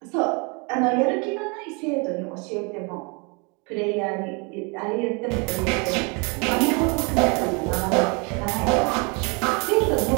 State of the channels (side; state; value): left; quieter; 32.1 dB